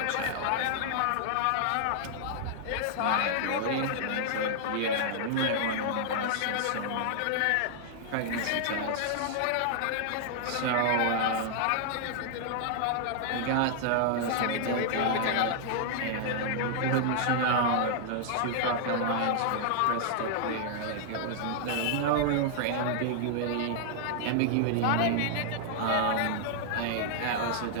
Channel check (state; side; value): different; both; correlation -0.01